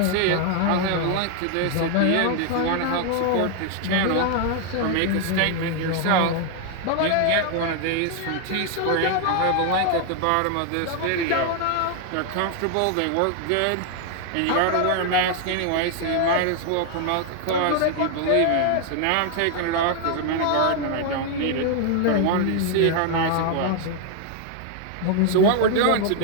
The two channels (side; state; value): both; different; correlation 0.00